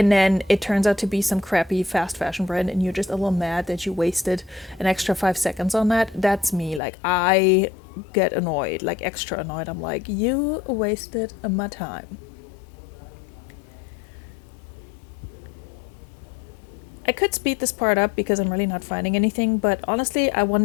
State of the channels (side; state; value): right; drops out; at 6.8 s